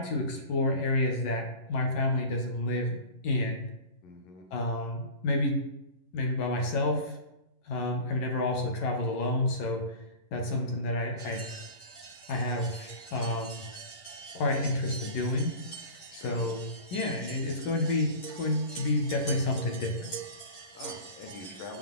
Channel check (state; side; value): late; right; 10 ms